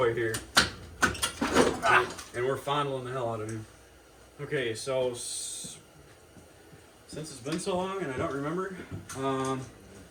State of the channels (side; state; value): both; identical; correlation 1.00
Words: here. And we're fondling the hell out of him. Okay, so since it's been so long and I don't remember,